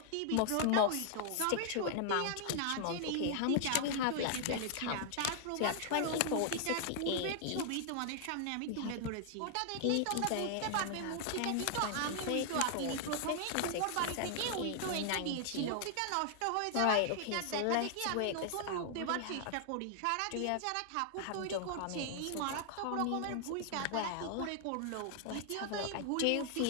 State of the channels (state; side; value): different; both; correlation 0.00